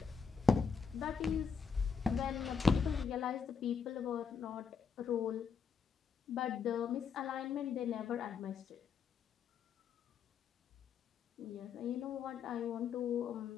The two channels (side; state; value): right; quieter; 5.8 dB